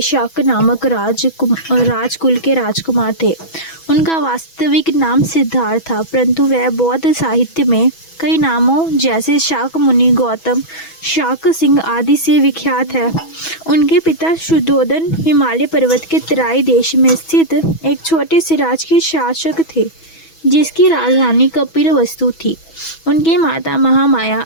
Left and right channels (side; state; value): right; late; 6.1 ms